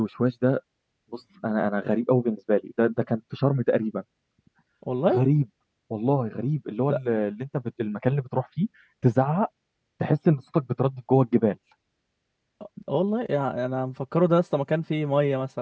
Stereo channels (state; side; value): identical; both; correlation 1.00